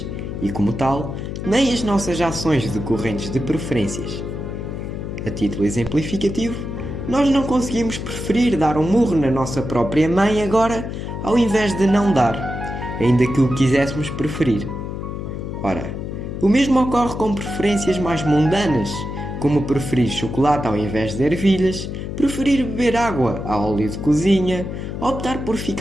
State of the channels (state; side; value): noise; left; hum, 6 dB below the sound